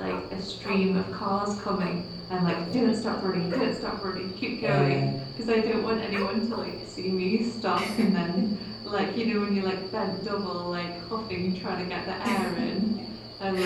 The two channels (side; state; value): both; identical; correlation 1.00